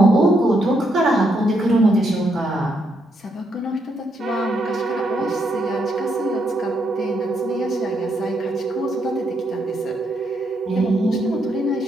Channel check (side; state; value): both; normal; correlation 0.77